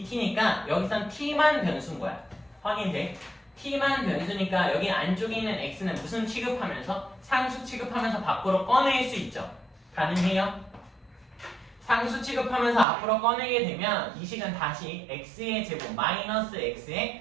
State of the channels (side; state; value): left; drops out; at 12.9 s